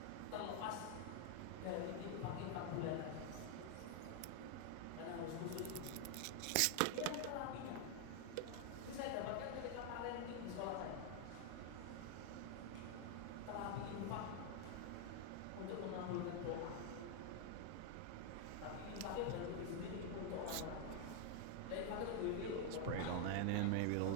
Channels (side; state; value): both; different; correlation 0.00